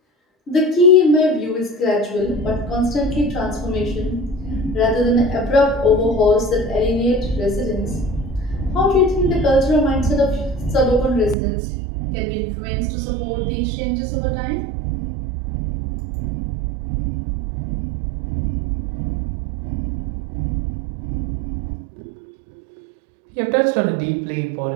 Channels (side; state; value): left; drops out; at 11.4 s